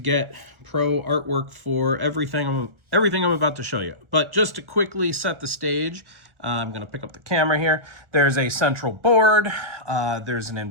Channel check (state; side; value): late; left; 1.4 ms